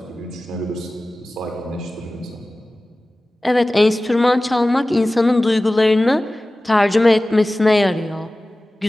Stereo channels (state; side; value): normal; both; correlation 0.97